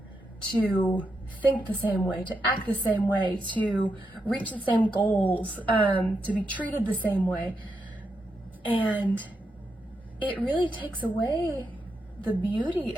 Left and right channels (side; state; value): both; normal; correlation 0.84